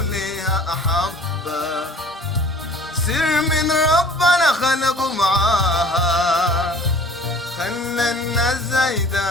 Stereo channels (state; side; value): normal; both; correlation 0.49